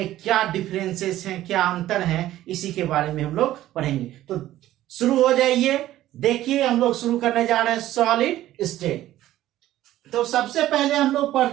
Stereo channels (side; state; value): left; quieter; 14.1 dB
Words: क्या डिफरेंसेस हैं, क्या अंतर हैं, इसी के बारे में हम लोग पढ़ेंगे। तो शुरू हो जाइए। देखिए, हम लोग शुरू करने जा रहे हैं सॉलिड स्टेट। तो सबसे पहले हम लोग